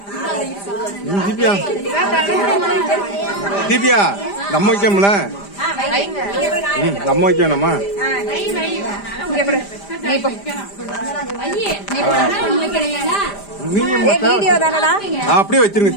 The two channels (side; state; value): right; late; 5.0 ms